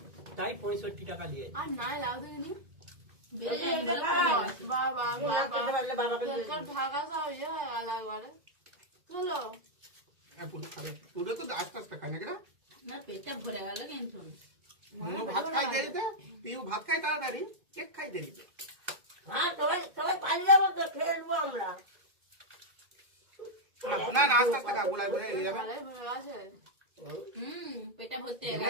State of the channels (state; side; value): late; left; 2.1 ms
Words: তাই 65 টাকা নিয়েছে। আর নাই লাউ দেখিনি বেড়ে যায় বলে কমে গেছে। বাবা বাবাকে ঢাকা সব ইয়ে হয়ে গেল একবারে চলো হ্যাঁ, পুরো খাবে। পুরো তো আস্তে আস্তে খায় নাকি না? না, পেটটা ভরে গেল কিন্তু। মনু ভাত খাই দেরিতে, পিউ ভাত খাই তাড়াতাড়ি, কেক খাই দেরিতে। হ্যাঁ সবাই সবাই পানি যাবো তো, খেলবো আমরা। না না, আস্তে আস্তে খা, গুলাই গুলাই হয়ে যাবে। ভালোই ভরে আছে পেটটা ভর্তি এখানে